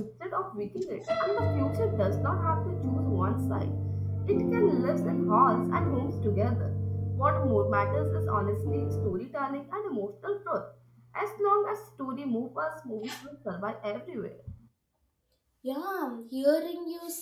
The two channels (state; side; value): identical; both; correlation 1.00